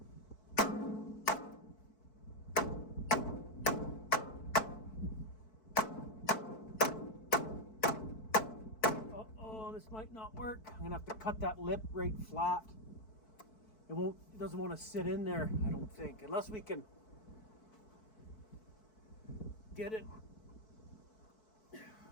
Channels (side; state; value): right; late; 4.6 ms